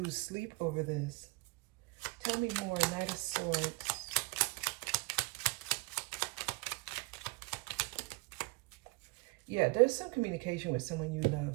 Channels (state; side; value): quieter; left; 27.9 dB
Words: sleep over this. Tell me more, Knight of Swords. Yeah, there's some communication with someone you